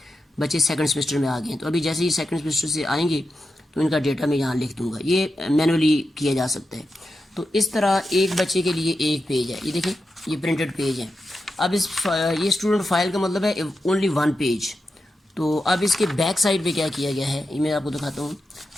بچے سیکنڈ سیمسٹر میں آ گئے ہیں, تو ابھی جیسے ہی سیکنڈ سیمسٹر سے آئیں گے تو ان کا ڈیٹا میں یہاں لکھ دوں گا. یہ مینولی کیا جا سکتا ہے. تو اس طرح ایک بچے کے لیے ایک پیج ہے, یہ دیکھیں یہ پرنٹڈ پیج ہے. اب یہ اسٹوڈنٹ فائل کا مطلب ہے اونلی 1 پیج. تو اب اس کے بیک سائڈ پہ کیا کیا گیا ہے یہ میں آپ کو دکھاتا ہوں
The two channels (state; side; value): normal; both; correlation 0.89